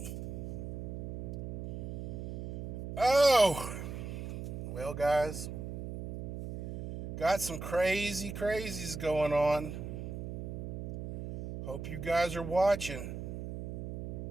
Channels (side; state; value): right; noise; hum, 6 dB below the sound